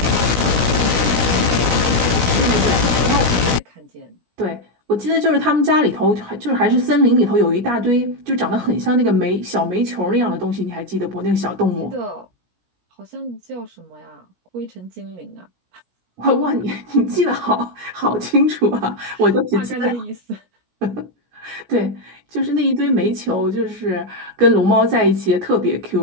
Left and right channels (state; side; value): late; left; 17 ms